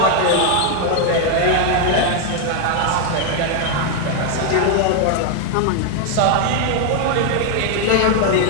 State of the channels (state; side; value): different; both; correlation 0.00